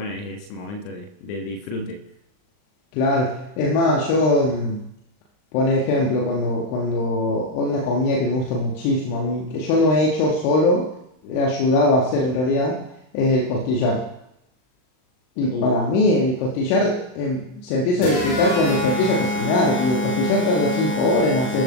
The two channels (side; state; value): right; late; 39 ms